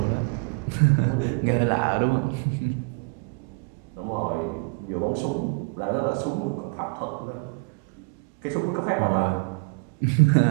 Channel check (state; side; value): quieter; left; 33.2 dB